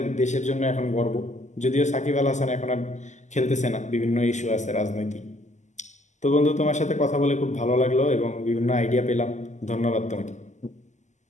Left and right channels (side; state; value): right; late; 0.34 ms